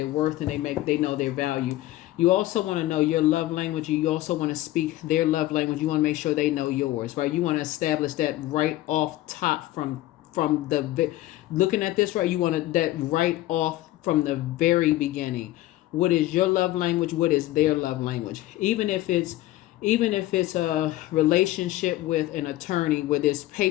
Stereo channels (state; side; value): quieter; right; 16.1 dB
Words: worth and they know their value. You also want to know your love language. You also want to speak their love language. You want to make sure they know yours, right? You want to establish that right off top from the looking at this, right? You want that right off from the very beginning. What is your love language? What is their love language? Even if it's a relationship with an attorney where there's